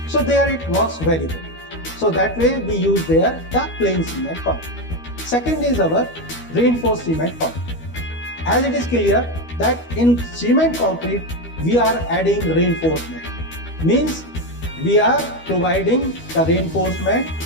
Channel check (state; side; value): late; right; 13 ms